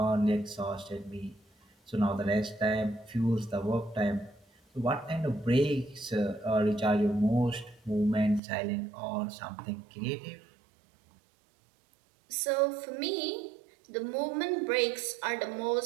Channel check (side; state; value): left; drops out; at 8.4 s